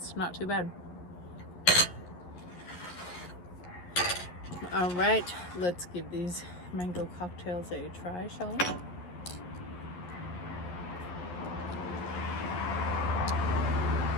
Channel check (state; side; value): late; right; 11 ms